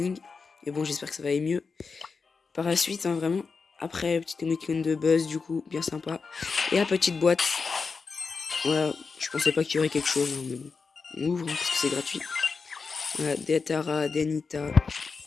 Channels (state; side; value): quieter; right; 4.9 dB